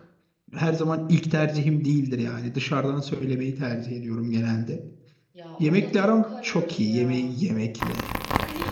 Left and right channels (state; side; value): identical; both; correlation 1.00